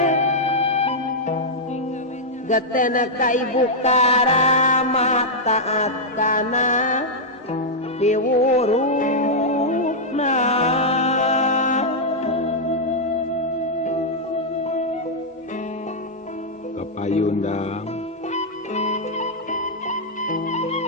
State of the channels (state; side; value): normal; both; correlation -0.05